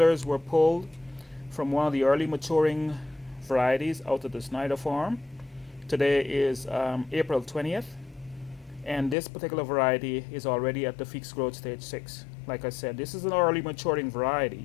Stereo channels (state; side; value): drops out; right; at 9.2 s